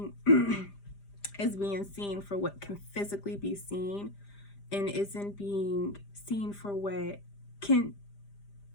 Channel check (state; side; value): late; right; 5.0 ms